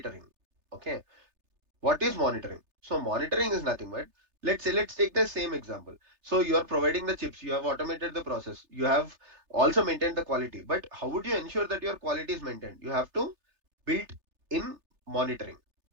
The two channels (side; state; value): left; late; 3.3 ms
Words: Okay. What is monitoring? So monitoring is nothing but, let's take the same example. So you are providing the chips, you have automated the process, you have also maintained the quality. But how would you ensure that your quality is maintained? You have to build in monitoring,